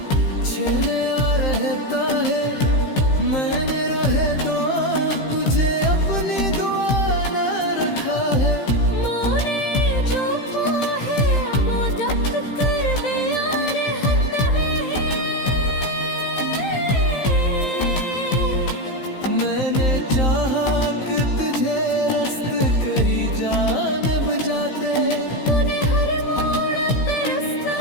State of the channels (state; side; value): late; right; 15 ms